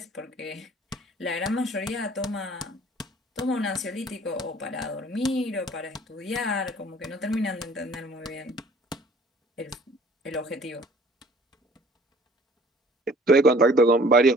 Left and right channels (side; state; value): both; normal; correlation 0.53